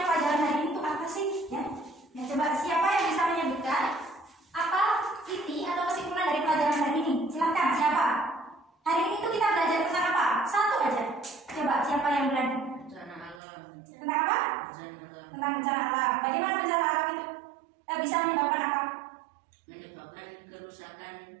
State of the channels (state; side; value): drops out; left; at 13.4 s